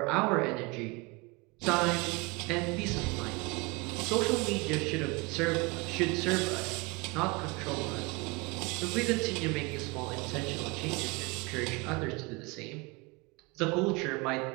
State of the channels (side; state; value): left; quieter; 26.8 dB